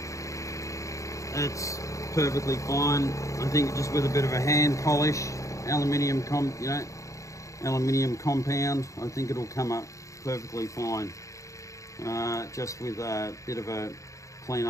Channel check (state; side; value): late; right; 0.15 ms